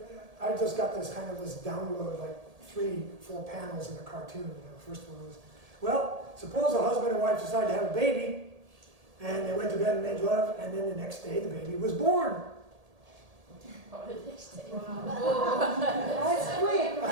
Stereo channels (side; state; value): left; late; 1.8 ms